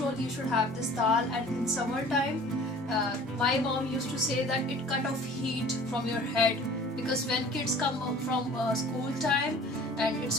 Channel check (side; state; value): both; normal; correlation 0.47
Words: you should have this dal. And in summertime, my mom used to say that it cut off heat from your head, because when kids come from school time and